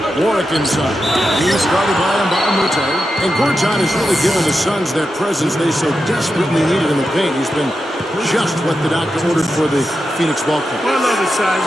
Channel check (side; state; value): both; normal; correlation 0.89